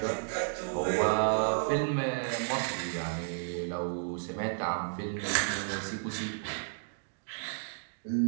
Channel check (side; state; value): left; silent; digital silence